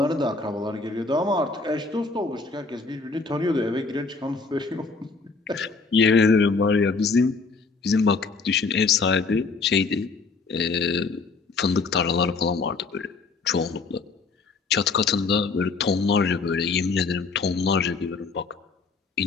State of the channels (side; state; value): right; quieter; 4.3 dB